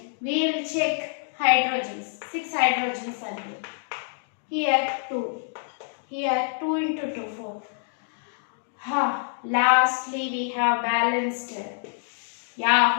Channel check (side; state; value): right; silent; digital silence